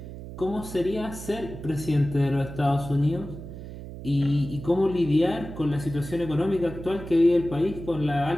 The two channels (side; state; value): right; noise; hum, 11 dB below the sound